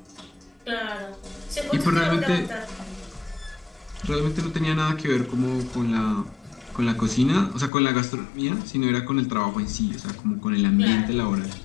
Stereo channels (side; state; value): right; drops out; at 7.7 s